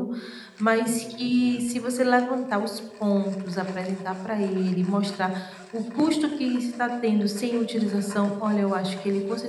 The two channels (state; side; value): identical; both; correlation 1.00